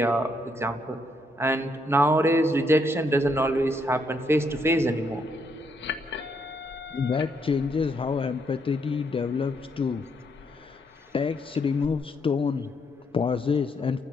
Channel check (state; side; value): normal; both; correlation 0.75